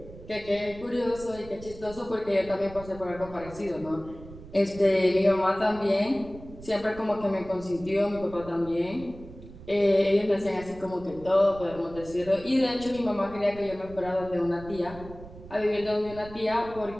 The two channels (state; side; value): noise; right; rumble, 16 dB below the sound